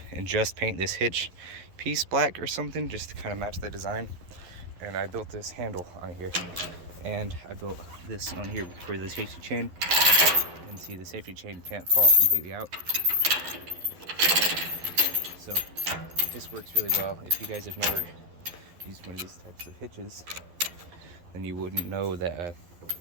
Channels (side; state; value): left; late; 11 ms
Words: and just paint this hitch piece black or something just to kind of match the design. And I built this handle on here, And I built this on here for the safety chain. And see, the safety chain can't fall completely out. So this works really well. If you guys have never used one of these types of hitches, then you wouldn't know that